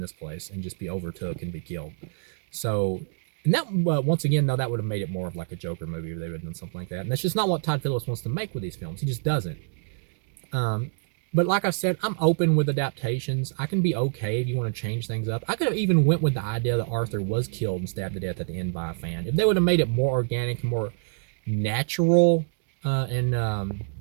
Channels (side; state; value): left; silent; digital silence